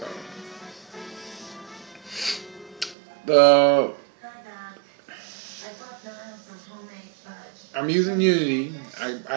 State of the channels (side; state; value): left; drops out; at 3.0 s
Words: the I'm using Unity.